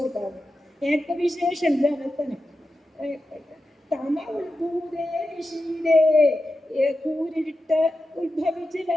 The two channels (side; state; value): both; normal; correlation 0.91